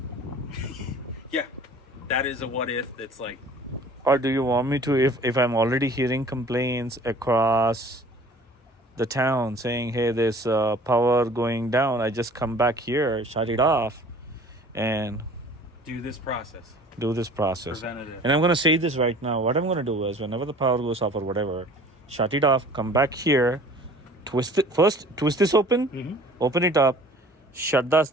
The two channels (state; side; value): normal; both; correlation 0.48